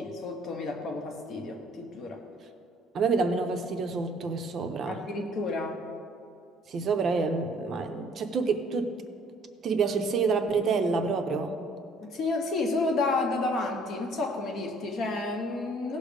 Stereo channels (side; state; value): both; normal; correlation 0.58